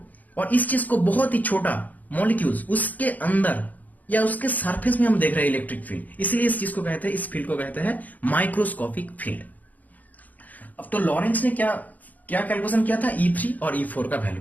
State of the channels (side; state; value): right; late; 0.079 ms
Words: और इस चीज को बहुत ही छोटा मॉलिक्यूल्स उसके अंदर या उसके सरफेस में हम देख रहे हैं इलेक्ट्रिक फील्ड, इसलिए इस चीज को कहते हैं, इस फील्ड को कहते हैं माइक्रोस्कोपिक फील्ड। अब तो लॉरेंज ने क्या कैलकुलेशन किया था, E3 और E4 का वैल्यू